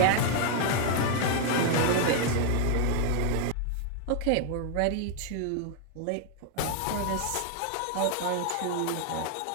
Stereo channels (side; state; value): both; different; correlation 0.00